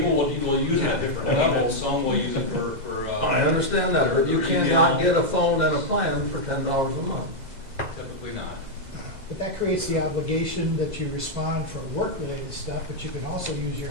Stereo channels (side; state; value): left; late; 2.0 ms